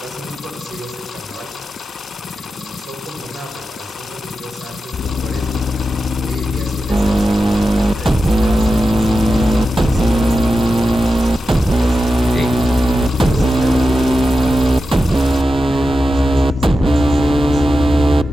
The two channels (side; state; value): both; normal; correlation 0.91